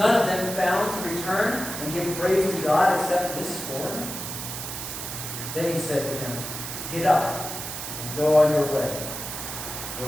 of them found to return and give praise to God except this foreigner?" Then he said to him, "Get up and go on your way.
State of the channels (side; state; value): right; noise; hiss, 7 dB below the sound